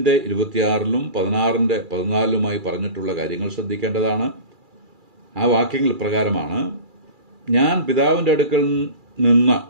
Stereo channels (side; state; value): left; late; 2.4 ms